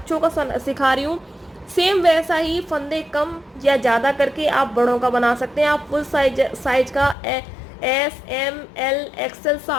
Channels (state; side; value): drops out; right; at 7.2 s